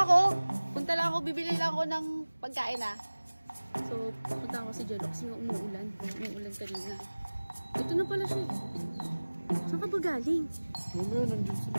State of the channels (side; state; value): both; inverted; correlation -1.00